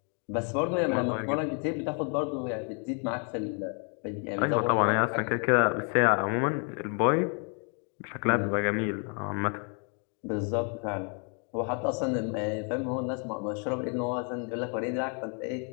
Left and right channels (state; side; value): quieter; right; 40.0 dB